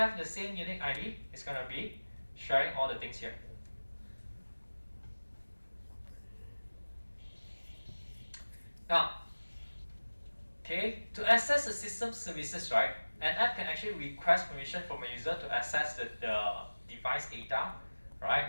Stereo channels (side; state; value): both; inverted; correlation -1.00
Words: the same unique ID, it's going to be sharing all the things here. Now, okay, to access the system services, right, an app can actually request permission from a user to access the device data,